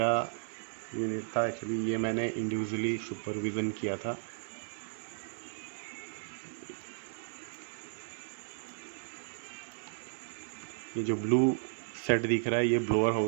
यूनिट था एक्चुअली, ये मैंने इंडिविजुअली सुपरविज़न किया था। ये जो ब्लू सेट दिख रहा है ये ब्लोअर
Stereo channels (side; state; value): left; silent; 55 dB below the other